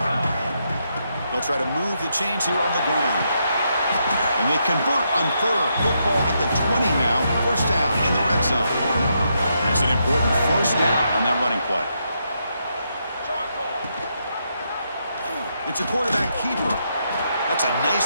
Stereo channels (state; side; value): inverted; both; correlation -0.80